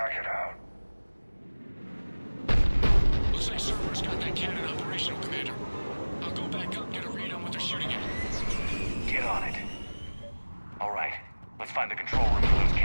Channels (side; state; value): both; inverted; correlation -1.00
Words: it out. Looks like Cerberus got that cannon operational, Commander. I'll go back up and get a read on what they're shooting at. Get on it. All right, let's find the control room for those